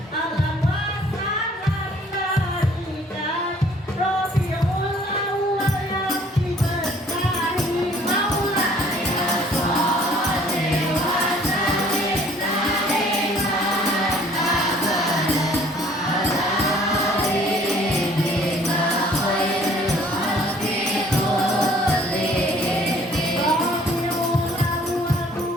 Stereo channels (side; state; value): both; normal; correlation 0.57